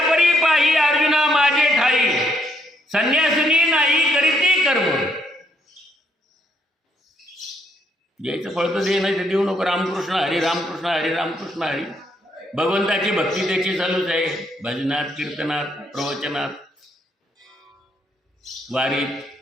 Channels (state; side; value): normal; both; correlation 0.72